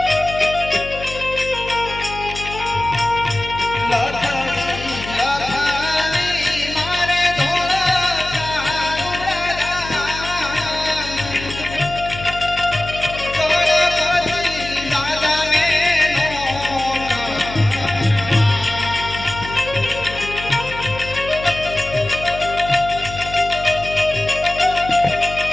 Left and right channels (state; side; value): noise; left; hum, 11 dB below the sound